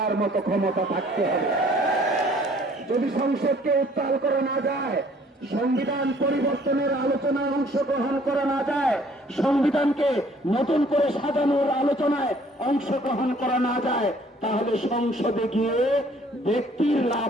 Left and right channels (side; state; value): both; normal; correlation 0.58